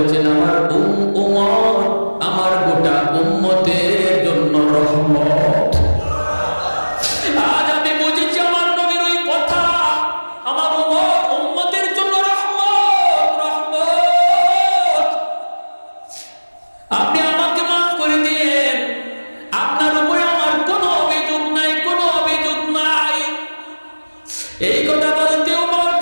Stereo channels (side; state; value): both; inverted; correlation -1.00